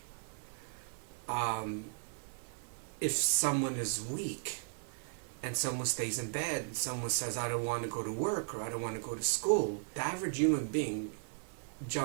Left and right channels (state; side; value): silent; left; 53 dB below the other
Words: If someone is weak and someone stays in bed and someone says, I don't want to go to work or I don't want to go to school, the average human being